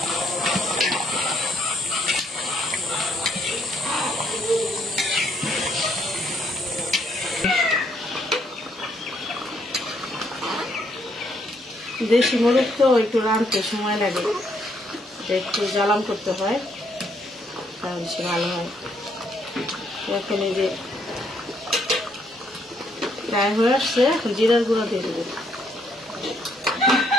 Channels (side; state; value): both; normal; correlation 0.71